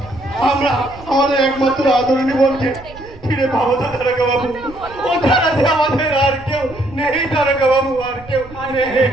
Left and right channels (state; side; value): noise; right; rumble, 19 dB below the sound